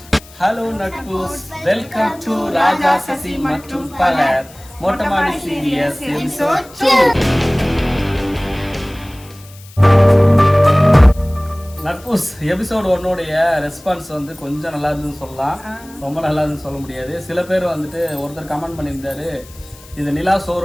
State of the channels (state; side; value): noise; left; hiss, 22 dB below the sound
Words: ஹலோ நட்பூஸ், வெல்கம் டு ராஜா சசி மற்றும் பலர் மொட்டமாடி சீரியஸ் எபிசோட் 2. நட்பூஸ் எபிசோட் 1 ரெஸ்பான்ஸ் வந்து கொஞ்சம் நல்லா இருந்துன்னு சொல்லலாம், ரொம்ப நல்லா இருந்துன்னு சொல்ல முடியாது. சில பேர் வந்துட்டு ஒருத்தர் கமெண்ட் பண்ணியிருந்தாரு, இது நிலா